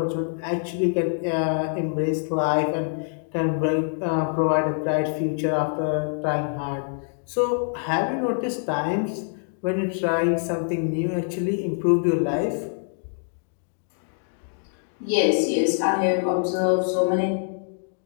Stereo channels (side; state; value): right; silent; 62 dB below the other